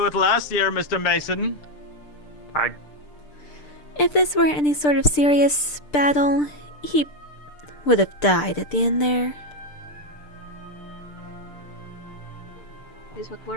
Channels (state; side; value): late; right; 6.7 ms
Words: it last year, Mr. Mason. If this were any sort of serious battle, he would have died at the end there. Is what